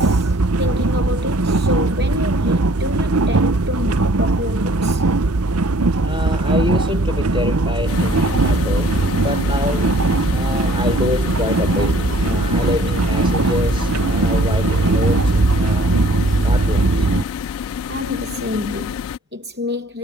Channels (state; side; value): normal; both; correlation 0.57